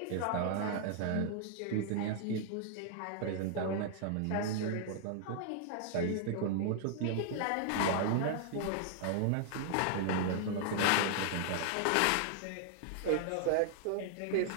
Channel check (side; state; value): both; different; correlation 0.00